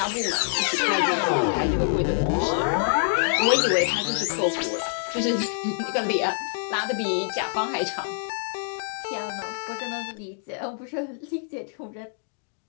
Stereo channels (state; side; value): silent; right; digital silence